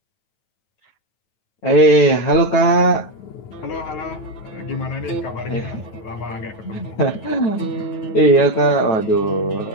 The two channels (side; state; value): right; late; 9.3 ms